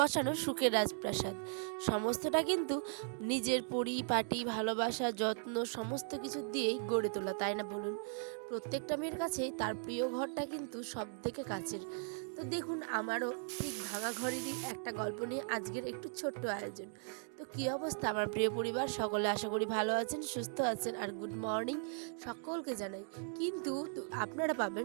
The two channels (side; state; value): left; silent; 52 dB below the other